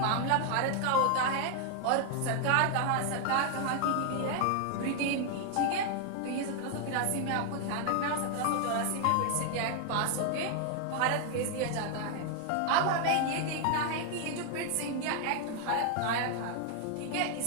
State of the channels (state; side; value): different; both; correlation 0.00